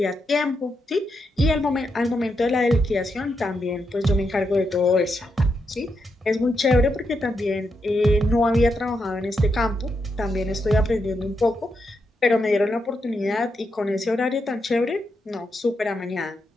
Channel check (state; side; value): normal; both; correlation 0.83